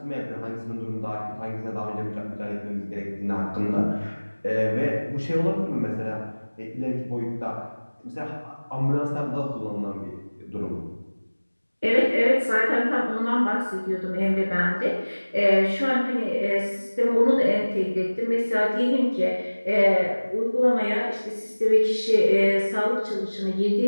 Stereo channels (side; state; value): both; inverted; correlation -1.00